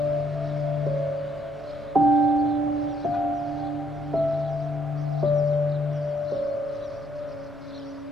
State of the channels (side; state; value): both; normal; correlation 0.68